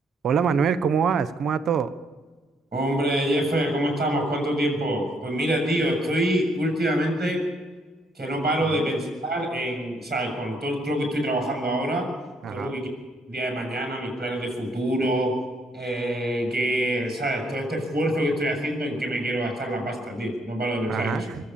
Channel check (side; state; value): both; normal; correlation 0.71